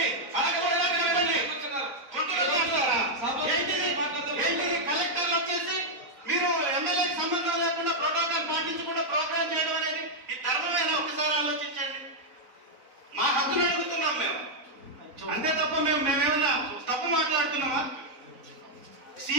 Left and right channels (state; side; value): late; left; 4.0 ms